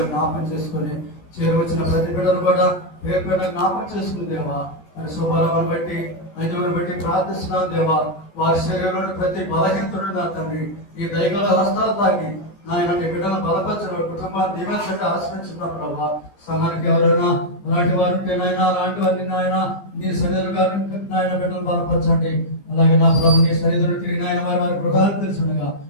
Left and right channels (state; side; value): late; right; 15 ms